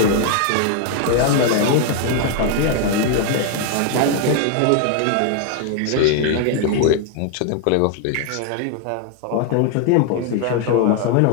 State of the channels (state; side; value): different; both; correlation 0.00